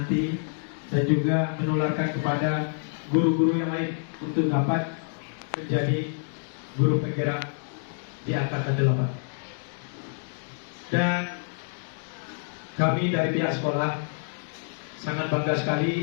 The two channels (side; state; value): right; silent; digital silence